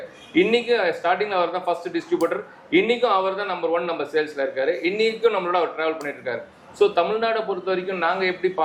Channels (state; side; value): identical; both; correlation 1.00